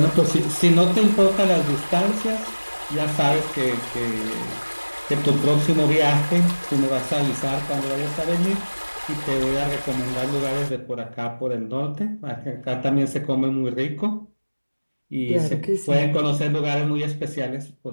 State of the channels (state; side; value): inverted; both; correlation -1.00